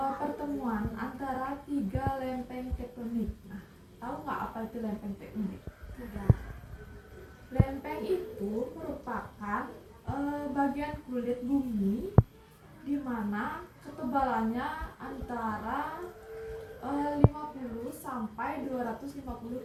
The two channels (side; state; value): both; identical; correlation 1.00